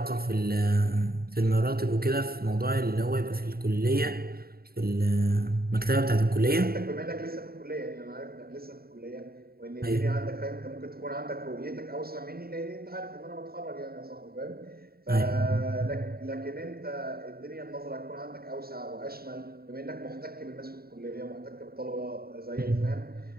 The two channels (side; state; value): left; late; 0.44 ms